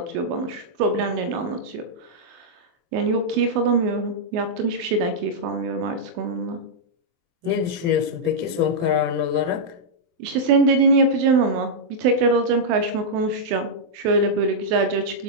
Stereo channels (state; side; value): late; left; 24 ms